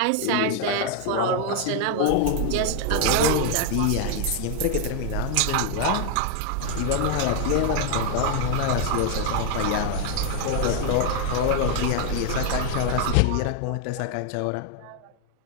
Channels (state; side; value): different; both; correlation 0.00